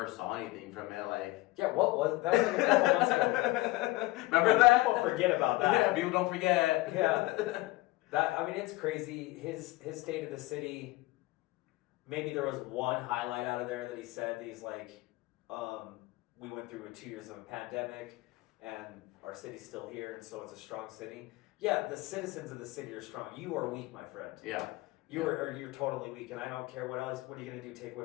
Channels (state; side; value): quieter; right; 20.2 dB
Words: saw anything from it. Like, what was that? Was like a couple months ago. Remember that? People forget about that. Yeah, people don't forget. Yeah, it's crazy. His State of the City. Maybe there was one highlight out of there that he said. He's like, we went through 2 years of a pandemic, and our city's still here, and so it's a strong city. Yeah, the citizens of the city are strong. You are weak, my friend. Yeah. You're totally weak, and I don't care what else. What are you gonna do? Take